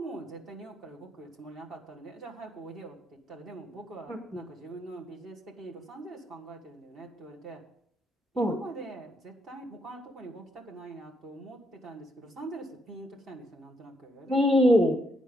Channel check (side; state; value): both; normal; correlation 0.76